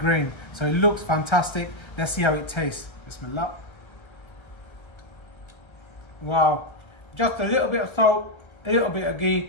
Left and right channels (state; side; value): late; right; 1.3 ms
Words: So it looks fantastic. Let's see how it tastes. Bismillah. Wow. Just a little bit of salt, a little bit of